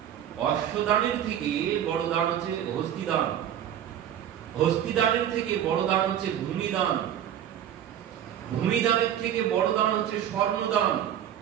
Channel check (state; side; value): quieter; left; 10.3 dB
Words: অশ্বদানের থেকে বড় দান হচ্ছে হস্তিদান, হস্তিদানের থেকে বড় দান হচ্ছে ভূমিদান, ভূমিদানের থেকে বড় দান হচ্ছে স্বর্ণদান,